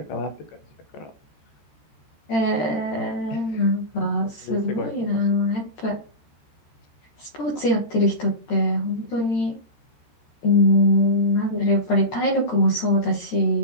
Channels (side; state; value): right; late; 13 ms